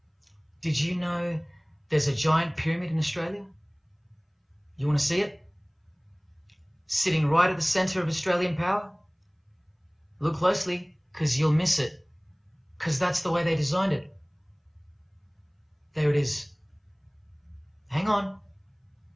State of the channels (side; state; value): both; identical; correlation 1.00